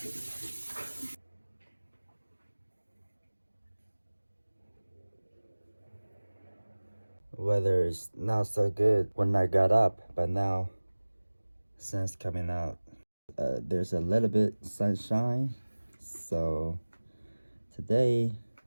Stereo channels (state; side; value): inverted; both; correlation -1.00